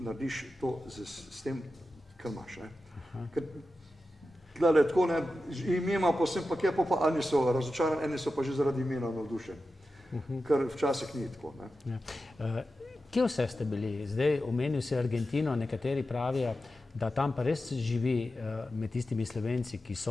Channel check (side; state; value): both; normal; correlation 0.92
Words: to s tem, kar imaš. Ker tlele tako, ne, ime ima posebno, pa kje pa eni so razočarani, eni so pa že zaradi imena navdušeni. Kar včasih ni tako. Ne. Ja. Kje vse ste bili? Zdaj omenil si Argentino, nekateri pravijo, da tam pa res živi med tistimi Slovenci, ki